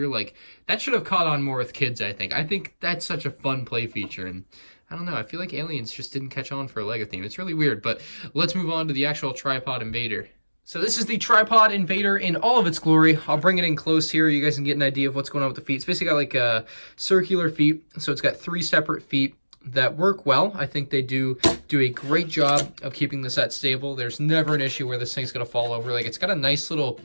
Like, that should have caught on more with kids, I think. I think that's such a fun play feature, and I don't know, I feel like Aliens just didn't catch on for a LEGO theme. It's really weird, but let's move on to the actual Tripod Invader. So this is the Tripod Invader in all of its glory. I'll bring it in close here. You guys can get an idea of what's going on with the feet. It's basically got like circular feet. So it's got 3 separate feet that work well. I think they do a great job of keeping the set stable. There's never an issue where this thing's going to fall over. Like, it's got a nice little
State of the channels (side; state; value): both; inverted; correlation -1.00